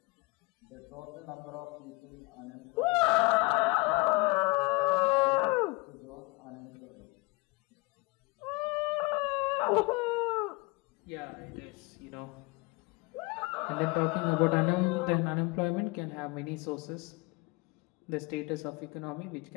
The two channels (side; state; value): right; quieter; 25.5 dB